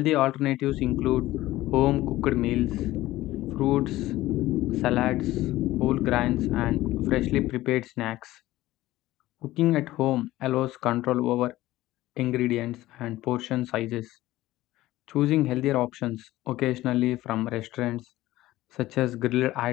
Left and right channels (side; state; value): right; quieter; 16.5 dB